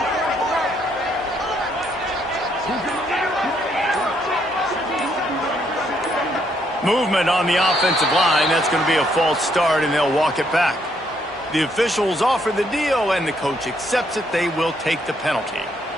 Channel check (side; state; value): both; normal; correlation 0.72